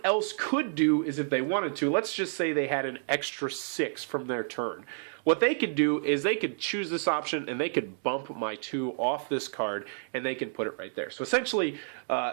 else could do is, if they wanted to, let's just say they had an extra 6 from their turn. What they could do is they could choose this option, and they could bump my 2 off this card, and they can put it right there. So essentially,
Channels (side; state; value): left; silent; digital silence